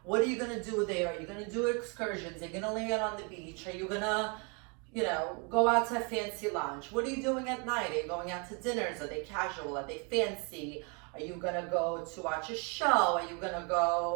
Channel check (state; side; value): quieter; left; 34.0 dB